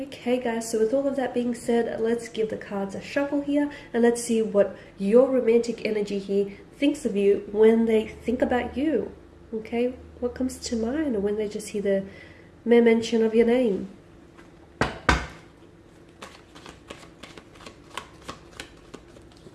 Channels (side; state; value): both; identical; correlation 1.00